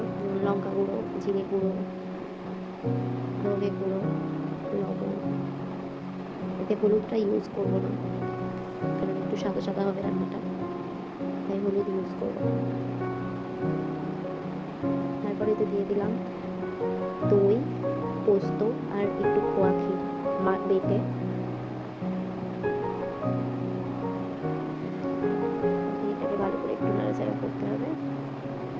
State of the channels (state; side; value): identical; both; correlation 1.00